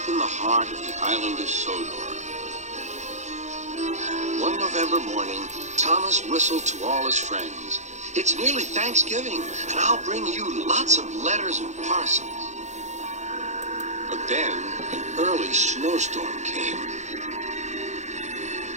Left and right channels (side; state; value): left; late; 0.34 ms